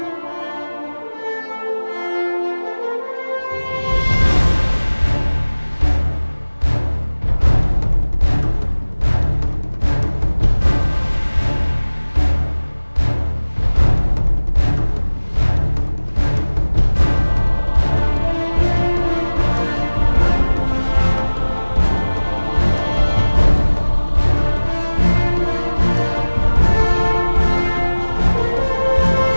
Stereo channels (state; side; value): inverted; both; correlation -1.00